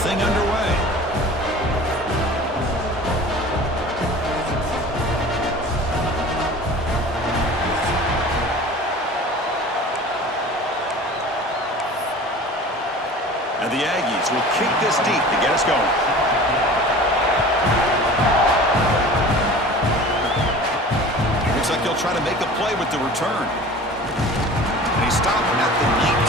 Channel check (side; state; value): both; normal; correlation 0.40